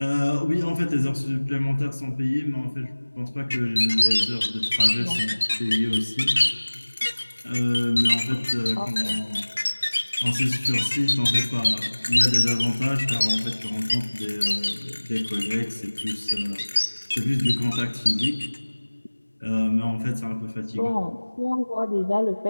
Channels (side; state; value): both; inverted; correlation -1.00